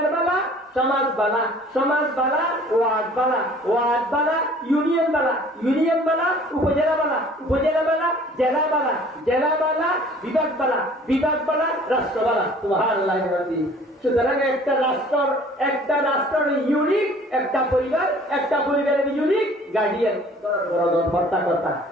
বালা সমাজ বালা ওয়ার্ড বালা ইউনিয়ন বালা উপজেলা বালা জেলা বালা বিভাগ বালা রাষ্ট্র বালা সুবহানাল্লাহ সুতরাং একটা রাষ্ট্রের ইউনিক, একটা পরিবারের ইউনিক গার্ডিয়ান কর্তা।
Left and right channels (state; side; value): normal; both; correlation 0.51